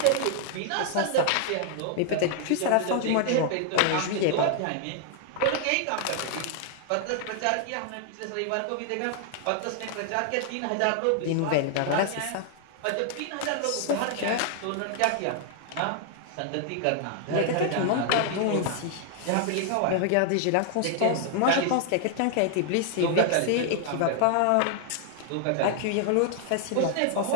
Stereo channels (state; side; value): different; both; correlation 0.00